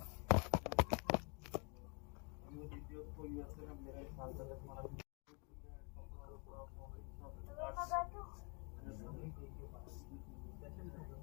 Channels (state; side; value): quieter; right; 35.2 dB